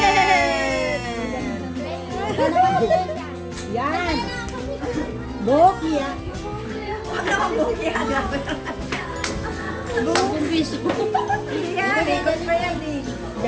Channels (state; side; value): identical; both; correlation 1.00